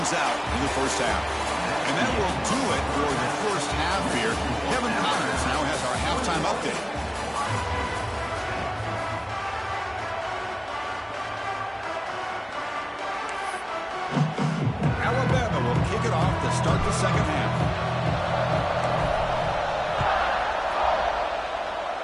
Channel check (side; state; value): both; identical; correlation 1.00